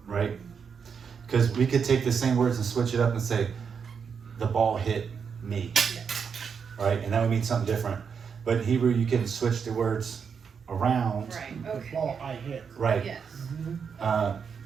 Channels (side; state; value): left; quieter; 6.5 dB